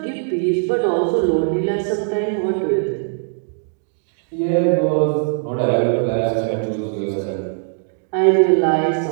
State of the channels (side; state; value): left; silent; 66 dB below the other